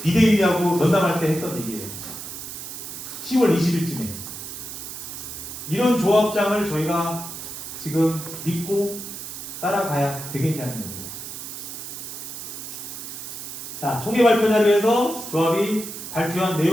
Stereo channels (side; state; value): right; noise; hiss, 9 dB below the sound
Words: 비대위하고 면담할 때 했던 얘기예요. 10월 20일쯤에 이런 조합장을 저희가 지금 믿고 따라가야 되겠냐는 겁니다. 자, 총회 발표 자료에서 조합이 발표한